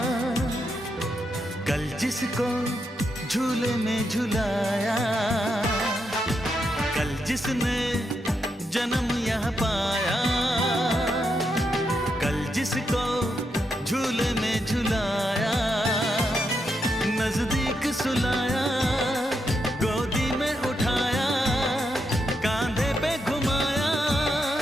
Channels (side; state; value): both; normal; correlation 0.82